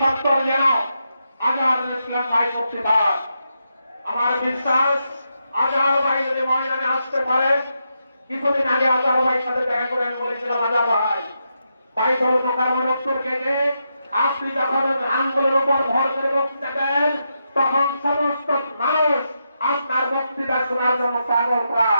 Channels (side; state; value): both; inverted; correlation -0.84